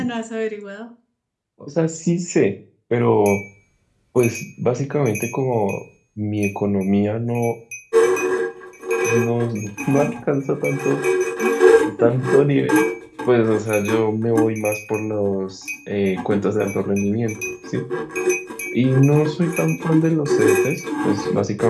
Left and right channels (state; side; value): identical; both; correlation 1.00